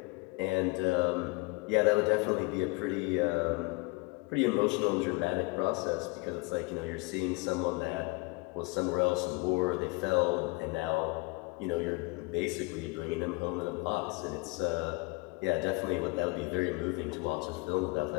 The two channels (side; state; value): right; quieter; 26.2 dB